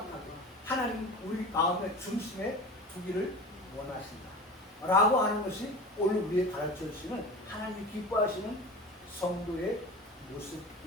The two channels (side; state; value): both; normal; correlation 0.34